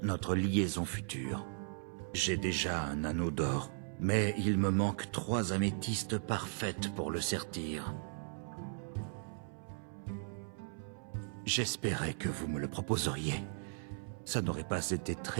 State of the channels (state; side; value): silent; left; 53 dB below the other